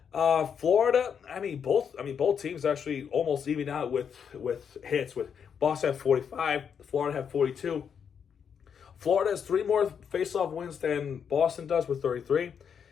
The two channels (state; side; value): quieter; right; 7.3 dB